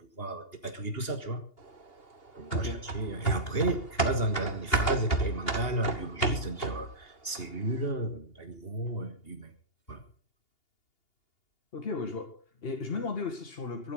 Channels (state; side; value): late; right; 2.8 ms